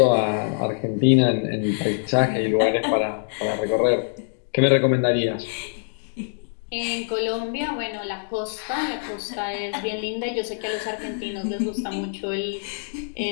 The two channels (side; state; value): right; silent; digital silence